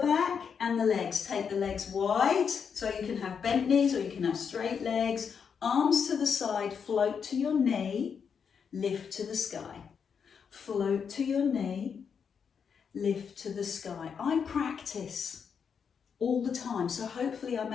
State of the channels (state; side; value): quieter; right; 6.7 dB